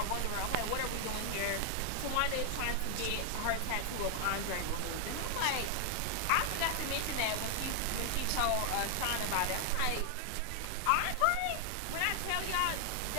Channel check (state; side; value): different; both; correlation 0.00